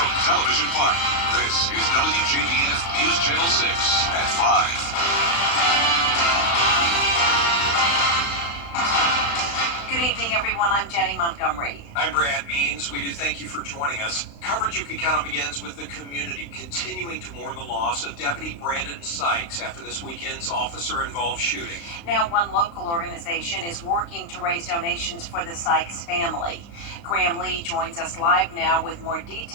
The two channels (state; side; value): late; right; 35 ms